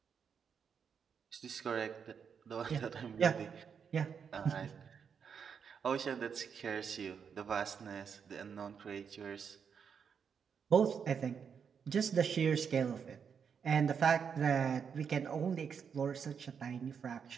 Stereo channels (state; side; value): quieter; left; 6.8 dB